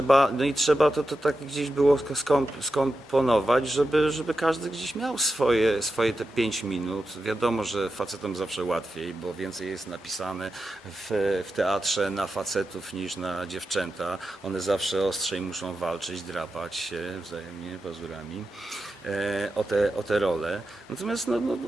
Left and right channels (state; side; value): normal; both; correlation 0.90